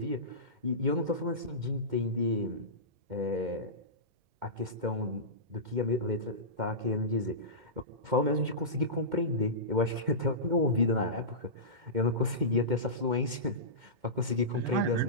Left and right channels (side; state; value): left; late; 2.1 ms